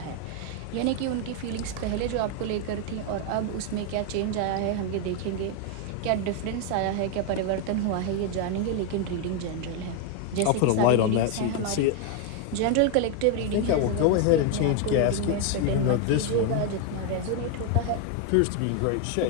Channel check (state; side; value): different; both; correlation 0.01